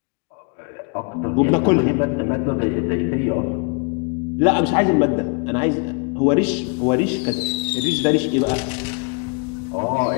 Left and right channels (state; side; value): quieter; right; 32.5 dB